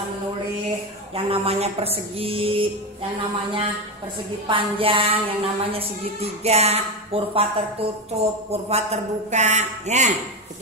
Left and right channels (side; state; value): both; normal; correlation 0.15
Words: menulis yang namanya persegi, yang namanya persegi panjang, yang namanya segitiga, kurva tertutup, kurva terbuka, ya,